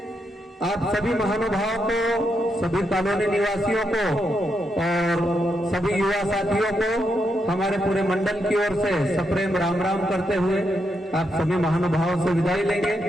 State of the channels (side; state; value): both; normal; correlation 0.81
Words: आप सभी महानुभावों को, सभी कॉलोनी निवासियों को और सभी युवा साथियों को हमारे पूरे मंडल की ओर से सप्रेम राम राम करते हुए आप सभी महानुभावों से विदाई लेंगे।